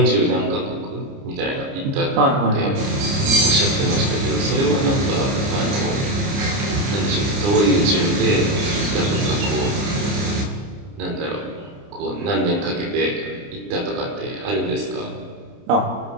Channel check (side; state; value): left; late; 30 ms